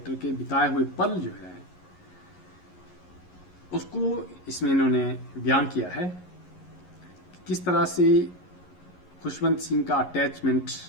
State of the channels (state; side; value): late; right; 11 ms